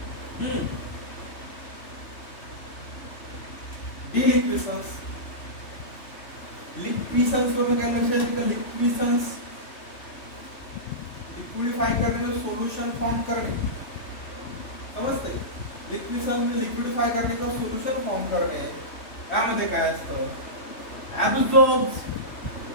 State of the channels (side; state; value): right; late; 3.0 ms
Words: डिलिक्विसन्स. लिक्विसन्स वरून काय लक्षात येतं का? लिक्विसन्स लिक्विडिफाय करणे, सोल्युशन फॉर्म करणे. समजते? लिक्विसन्स लिक्विडिफाय करणे किंवा सोल्युशन फॉर्म करणे. यामध्ये काय असतं? ऍब्सॉर्ब्स